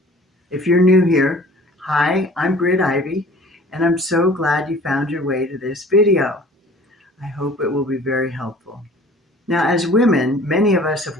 If you're new here, hi, I'm Britt Ivy, and I'm so glad you found your way to this video. I hope it will be very helpful. Now, as women, many of us have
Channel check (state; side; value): normal; both; correlation 0.48